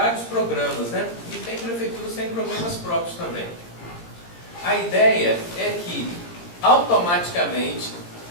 programas, né? E tem prefeituras que têm programas próprios também. A ideia é que automaticamente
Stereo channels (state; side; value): late; right; 17 ms